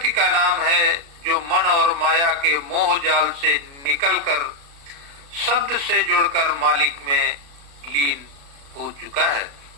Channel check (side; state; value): left; late; 36 ms